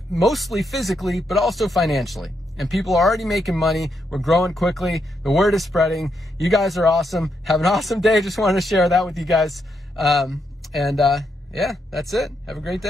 mostly physically, but also financially. And people are already making money. We're growing quickly. The word is spreading. You guys are awesome. Have an awesome day. Just wanted to share that with you guys. Yeah, that's it. Have a great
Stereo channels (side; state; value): both; normal; correlation 0.80